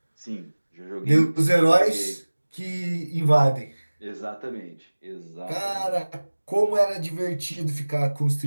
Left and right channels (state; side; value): inverted; both; correlation -1.00